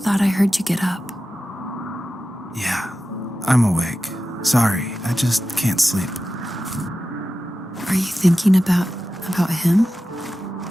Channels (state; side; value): normal; both; correlation 0.93